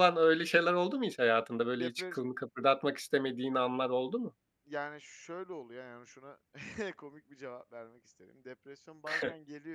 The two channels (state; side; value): identical; both; correlation 1.00